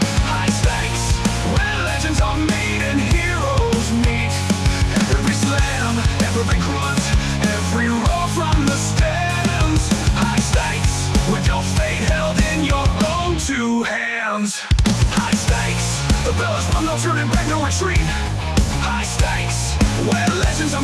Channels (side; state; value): both; identical; correlation 1.00